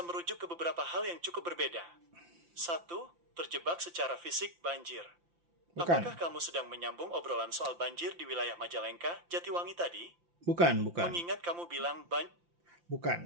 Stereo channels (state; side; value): late; left; 5.8 ms